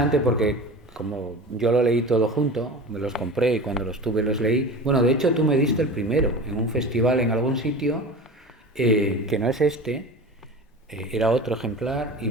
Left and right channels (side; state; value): both; normal; correlation 0.33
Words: porque como yo lo leí todo junto, me los compré y cuando los tuve los leí. Bueno, de hecho tú me diste el primero en un festival en algún sitio, que no es este. Era otro ejemplar y